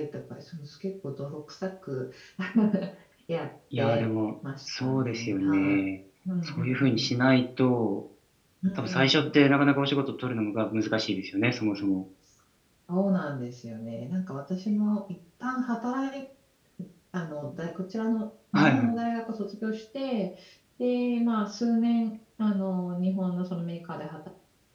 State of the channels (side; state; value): both; identical; correlation 1.00